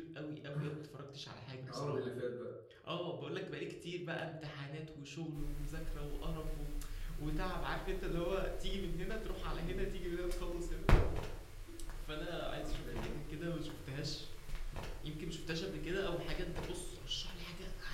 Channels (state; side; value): identical; both; correlation 1.00